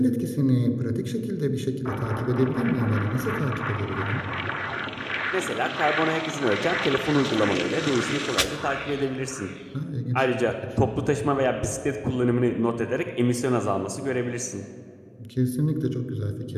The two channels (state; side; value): identical; both; correlation 1.00